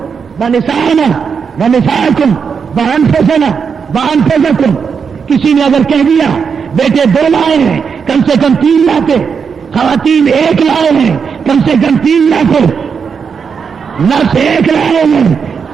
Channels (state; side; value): quieter; left; 6.2 dB